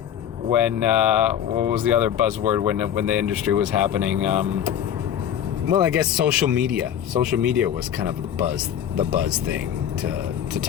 when what was the other buzzword when the industry was happening? Well, I guess social media. Social media was kind of the buzz thing to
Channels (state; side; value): quieter; right; 9.6 dB